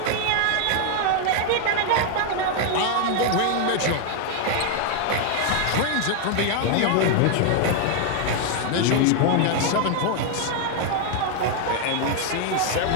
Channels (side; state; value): both; different; correlation 0.00